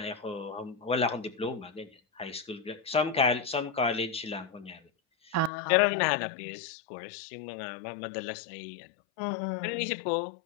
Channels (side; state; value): right; drops out; at 5.5 s